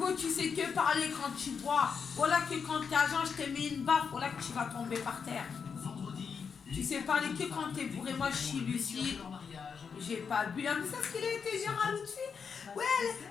tu sais que parler quand tu bois. Voilà que quand t'es agent, je t'ai mis une baffe, voilà que tu vas tomber par terre. Tu sais parler que quand t'es bourré, moi je suis lucide. J'ai pas bu. Mais c'est ce qu'il a été dire à l'autre fille. Ouais,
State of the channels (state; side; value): quieter; right; 6.2 dB